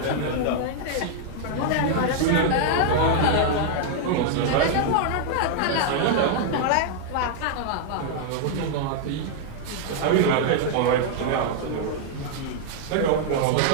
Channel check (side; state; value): both; different; correlation -0.01